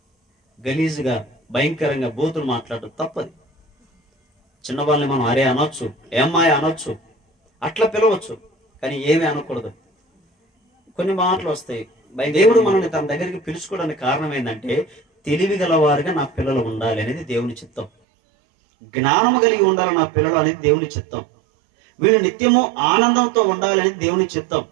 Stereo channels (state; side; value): drops out; left; at 17.9 s